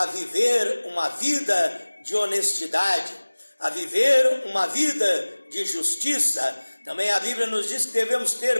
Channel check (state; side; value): inverted; both; correlation -1.00